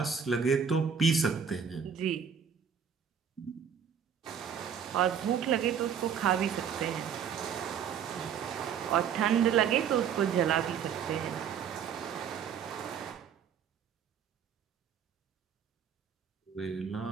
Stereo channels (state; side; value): quieter; left; 7.6 dB